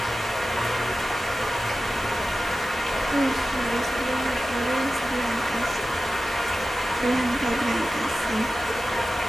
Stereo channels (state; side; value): normal; both; correlation 0.94